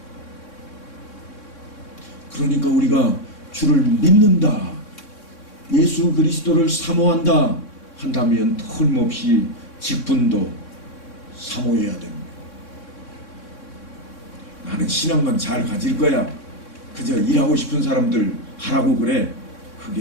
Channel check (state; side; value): late; right; 3.6 ms